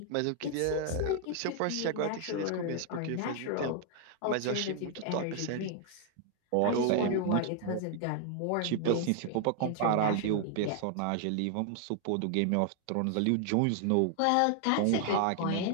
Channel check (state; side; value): different; both; correlation 0.00